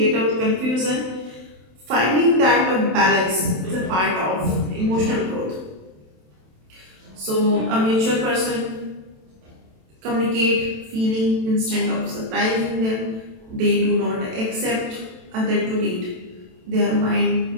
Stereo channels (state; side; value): late; left; 27 ms